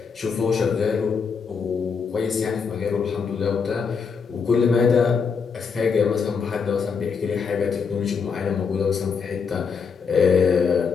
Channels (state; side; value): quieter; right; 5.8 dB